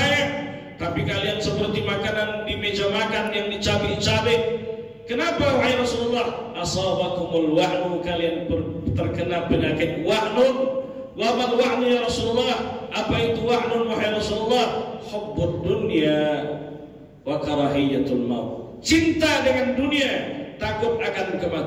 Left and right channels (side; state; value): both; identical; correlation 1.00